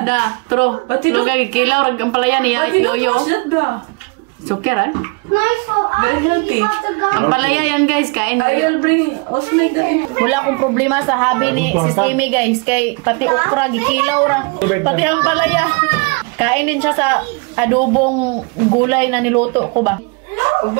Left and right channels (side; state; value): left; quieter; 31.2 dB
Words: True. Lugay kilaw rag ang palaya niya yoyo. Suker eh? Very healthy. Ang palaya yan guys, kain I will bring also like that. Wala akong problema sa hobby ni Sis Amy guys. Kay pati okra, gikilaw ra. Pati ang palaya. Kain din siya sa adobong gulay na niluto ko ba?